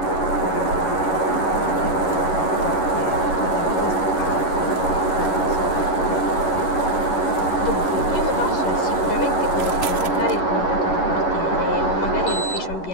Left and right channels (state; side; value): late; right; 11 ms